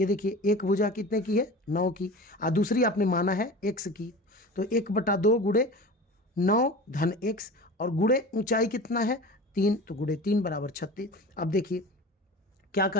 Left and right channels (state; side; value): normal; both; correlation 0.35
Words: देखिए। एक भुजा कितने की है, 9 की, और दूसरी आपने माना है x की। तो 1/2 गुणे 9 धन x, और गुणे ऊंचाई कितना है 3, तो गुणे 3 बराबर 36। अब देखिए क्या